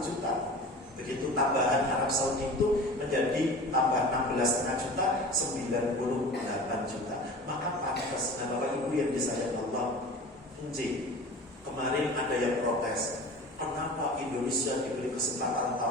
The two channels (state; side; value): normal; both; correlation 0.37